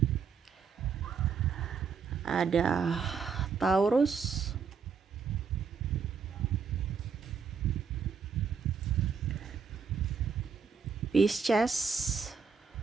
ada Taurus, Pisces,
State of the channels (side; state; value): left; quieter; 6.0 dB